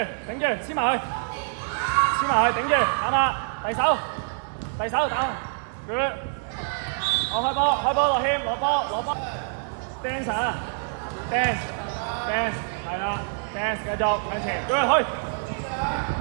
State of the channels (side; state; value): left; silent; digital silence